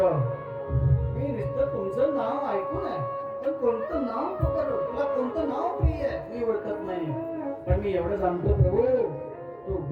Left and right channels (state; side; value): identical; both; correlation 1.00